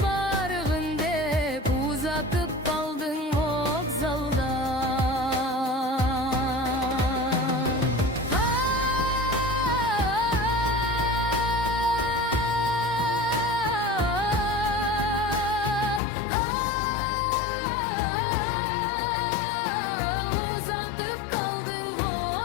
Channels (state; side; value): drops out; right; at 16.0 s